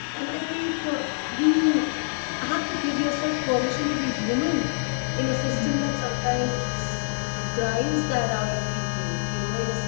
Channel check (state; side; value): silent; right; digital silence